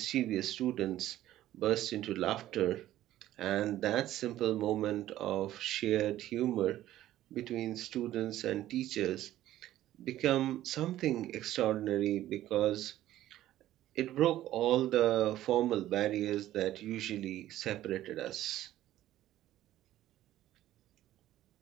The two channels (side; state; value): left; quieter; 13.8 dB